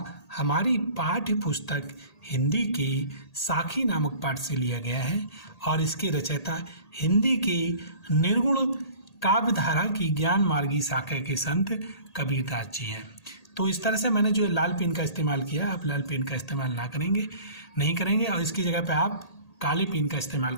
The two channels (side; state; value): right; late; 1.8 ms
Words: हमारी पाठ्य पुस्तक हिंदी के साखी नामक पाठ से लिया गया है और इसके रचयिता हिंदी के निर्गुण काव्यधारा की ज्ञान मार्गी शाखा के संत कबीरदास जी हैं। तो इस तरह से मैंने जो लाल पेन का इस्तेमाल किया, आप लाल पेन का इस्तेमाल नहीं करेंगे और इसकी जगह पे आप काले पेन का इस्तेमाल